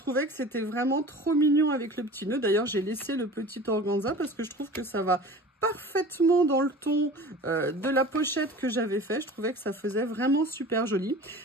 que c'était vraiment trop mignon avec le petit nœud. D'ailleurs, j'ai laissé le petit organza parce que je trouve que ça va parfaitement dans le ton de la pochette que j'avais fait. Je trouvais que ça faisait vraiment super joli.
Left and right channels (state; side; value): normal; both; correlation 0.39